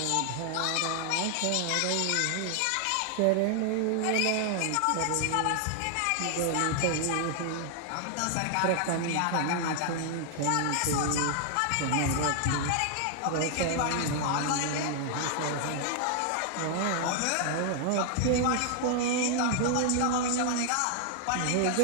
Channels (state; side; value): different; both; correlation 0.00